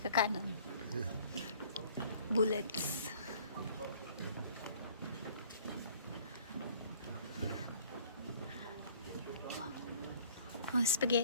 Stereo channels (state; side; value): inverted; both; correlation -0.53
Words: kanan. Bullets. Oh,